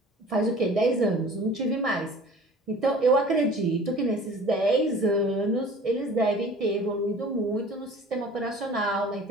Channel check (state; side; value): normal; both; correlation 0.45